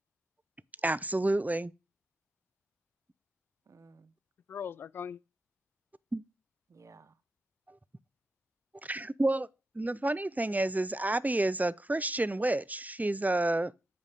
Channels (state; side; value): normal; both; correlation 0.87